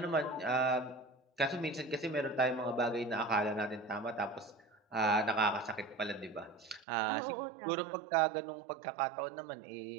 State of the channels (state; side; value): drops out; left; at 6.9 s